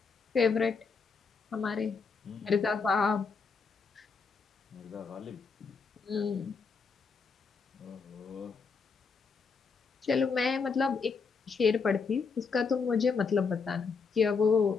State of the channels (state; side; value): quieter; right; 5.1 dB